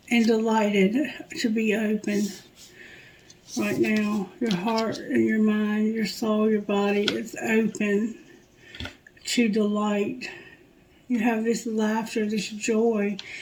and delighted to be open right now. Your heart and your mind, your soul, your body is open to delight. You have this laughter, this joy,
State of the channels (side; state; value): both; identical; correlation 1.00